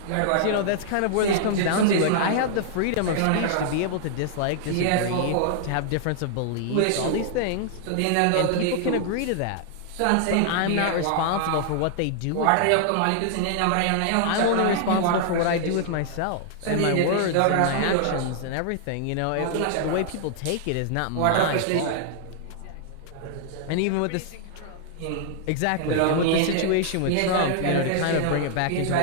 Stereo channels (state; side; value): different; both; correlation -0.01